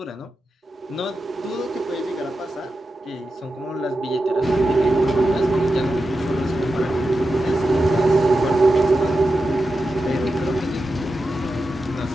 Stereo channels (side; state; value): both; normal; correlation 0.90